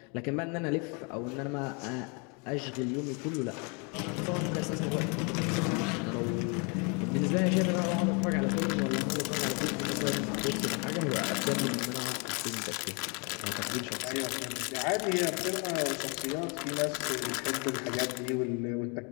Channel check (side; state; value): right; quieter; 33.2 dB